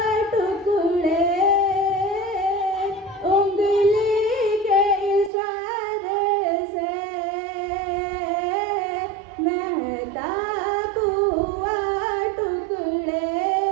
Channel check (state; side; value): drops out; left; at 5.3 s